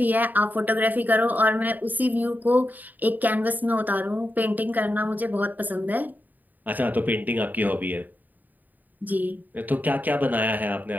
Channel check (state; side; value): late; left; 0.085 ms